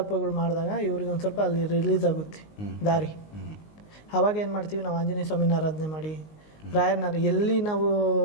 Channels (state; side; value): late; right; 19 ms